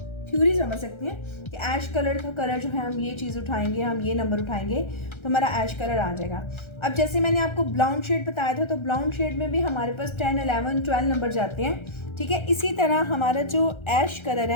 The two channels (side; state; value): right; late; 1.3 ms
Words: थ्योरी समझ सकते हैं कि ऐश कलर का कलर जो है हम ये चीज़ उठाएंगे, हम ये नंबर उठाएंगे तो हमारा ऐश कलर आ जाएगा। अब जैसे मैंने आपको ब्लाउंड शेड बताया था, तो ब्लाउंड शेड में भी हमारे पास 10, 11, 12 नंबर जाते हैं, ठीक है। इसी तरह हमारा जो ऐश कलर